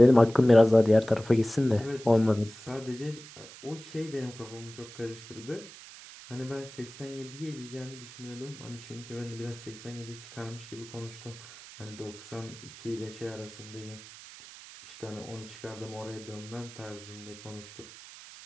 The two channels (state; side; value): noise; right; hiss, 17 dB below the sound